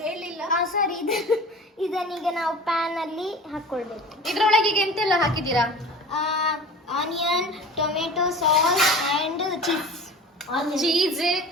ಹೇಳಿಲ್ಲ. ಸಾರಿ, ಇದನ್ನೀಗ ನಾವು ಪ್ಯಾನ್ ಅಲ್ಲಿ ಹಾಕೊಳ್ಬೇಕು. ಇದ್ರೊಳಗೆ ಈಗ ಎಂತೆಲ್ಲ ಹಾಕಿದ್ದೀರಾ? Onion, tomato sauce and cheese,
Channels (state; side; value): normal; both; correlation 0.39